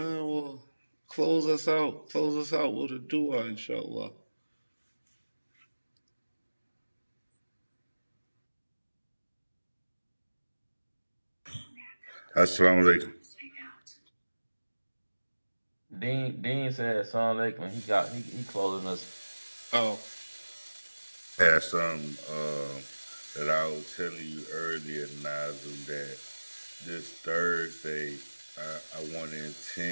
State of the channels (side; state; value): both; inverted; correlation -1.00